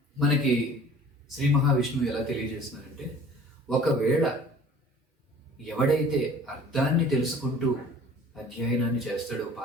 మనకి శ్రీ మహావిష్ణువు ఎలా తెలియజేస్తున్నారంటే, ఒకవేళ ఎవడైతే అర్థాన్ని తెలుసుకుంటూ అధ్యయనాన్ని చేస్తాడో,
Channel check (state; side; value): normal; both; correlation 0.48